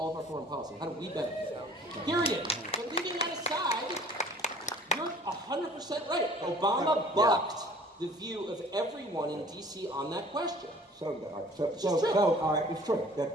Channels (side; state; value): both; normal; correlation 0.50